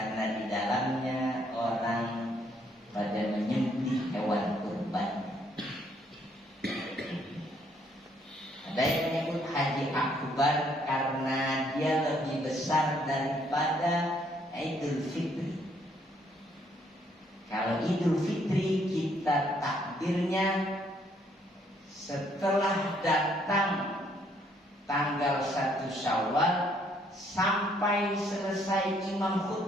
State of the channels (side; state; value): both; normal; correlation 0.68